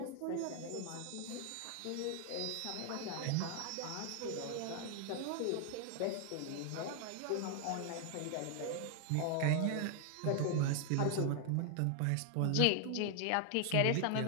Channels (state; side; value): different; both; correlation 0.00